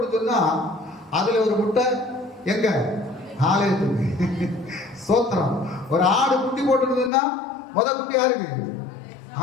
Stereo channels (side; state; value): right; drops out; at 7.1 s